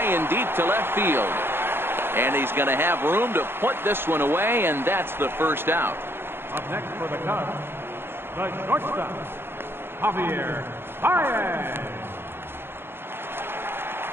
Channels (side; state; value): left; late; 0.11 ms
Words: and deep to left field. And he's going to have room to put this one away, and that's the first out. Up next for the Cubs, the shortstop, Javier Baez.